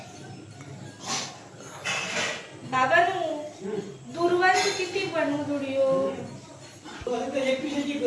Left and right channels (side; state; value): both; identical; correlation 1.00